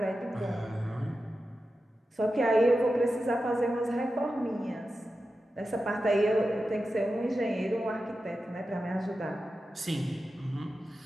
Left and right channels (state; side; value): normal; both; correlation 0.92